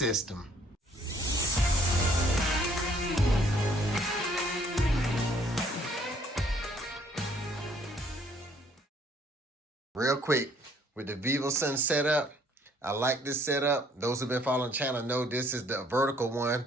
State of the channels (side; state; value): both; normal; correlation 0.62